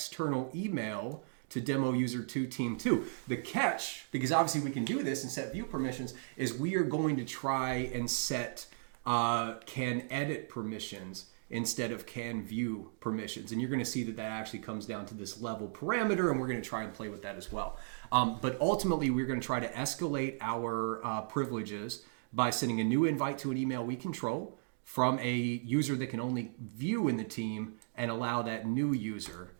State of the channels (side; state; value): left; silent; digital silence